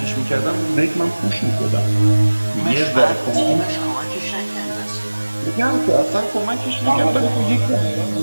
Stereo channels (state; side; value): inverted; both; correlation -1.00